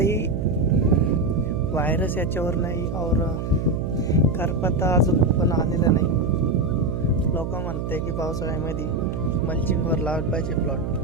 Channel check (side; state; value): right; noise; hum, 3 dB below the sound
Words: व्हायरस याच्यावर नाही और करपता अजून पण आलेला नाही. लोक म्हणते की पावसाळ्यामध्ये मल्चिंगवर लावलं पाहिजे प्लॉट.